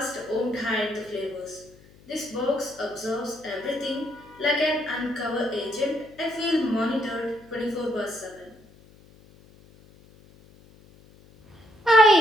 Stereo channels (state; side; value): noise; left; hum, 25 dB below the sound